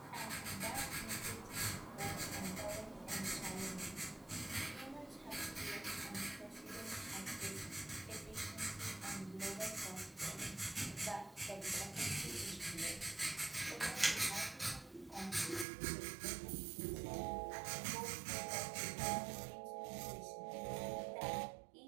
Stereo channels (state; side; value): drops out; left; at 15.7 s